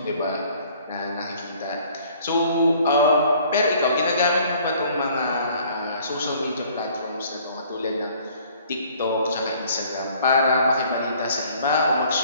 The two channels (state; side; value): inverted; both; correlation -0.56